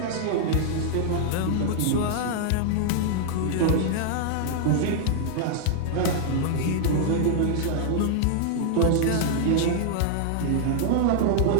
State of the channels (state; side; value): different; both; correlation -0.01